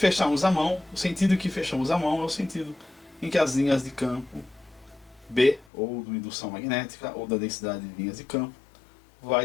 a mão, o sentido que fechamos a mão é o sentido em que as linhas de campo B, ou da indução magnética, ou da densidade de linhas de campo,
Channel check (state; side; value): drops out; right; at 5.7 s